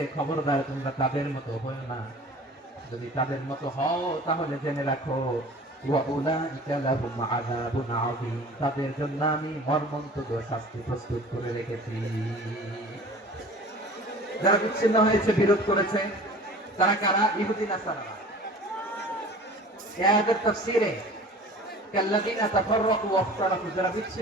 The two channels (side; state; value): both; normal; correlation 0.43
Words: খবরদার তোমরা তাদের মতো হও না। যদি তাদের মতো হও তাহলে জেনে রাখো, ওয়াউলাইকা লাহুম আযাবুন আযীম, তাদের জন্য আমি মর্মন্তুদ শাস্তি প্রস্তুত করে রেখেছি। যারা বিচ্ছিন্ন হয়েছে, বিরোধ করেছে, তারা কারা? ইহুদি নাসারা। এই আয়াতের তাফসীরে কাল্লাযীনা তাফাররাকু ওয়াখতালাফু, যারা